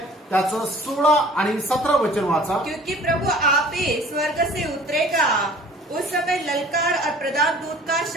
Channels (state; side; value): normal; both; correlation 0.49